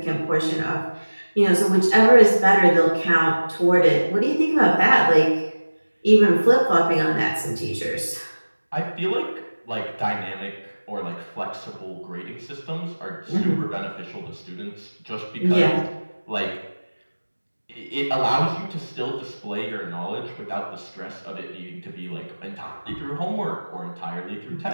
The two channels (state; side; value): inverted; both; correlation -1.00